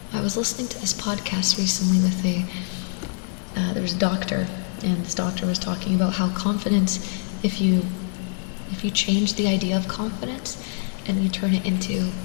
I was listening to this podcast recently with there was a doctor, and this doctor was talking about how confidence, if you change the idea of confidence and you turn it into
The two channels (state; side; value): silent; right; digital silence